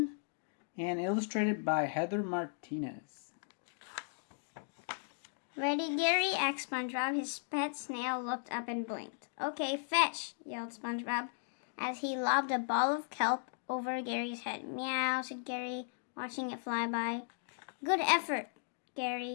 and illustrated by Heather Martinez. Ready, Gary? asked SpongeBob. His pet snail looked up and blinked. Okay, fetch, yelled SpongeBob as he lobbed a ball of kelp over Gary's head. Meow, said Gary, watching it fly by. Good effort,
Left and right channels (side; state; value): right; silent; digital silence